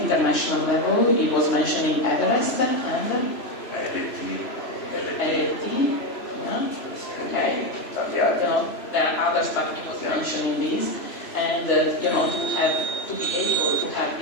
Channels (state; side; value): late; right; 3.0 ms